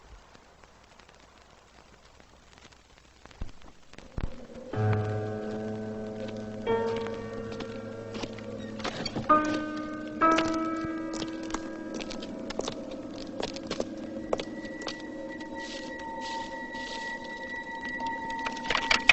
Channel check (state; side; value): identical; both; correlation 1.00